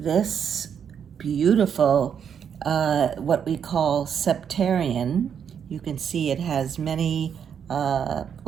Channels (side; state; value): left; quieter; 7.8 dB